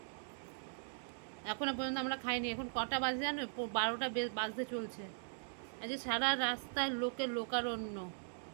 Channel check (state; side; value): silent; left; digital silence